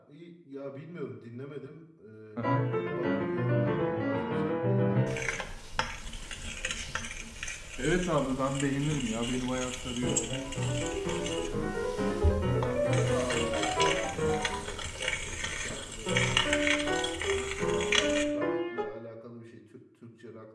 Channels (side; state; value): both; identical; correlation 1.00